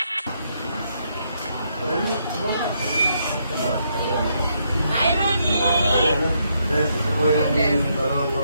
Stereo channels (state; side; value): inverted; both; correlation -0.76